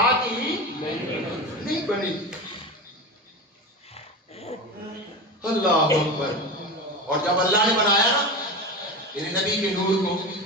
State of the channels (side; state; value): both; normal; correlation 0.24